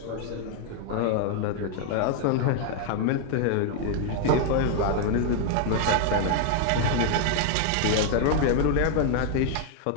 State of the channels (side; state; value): both; different; correlation 0.00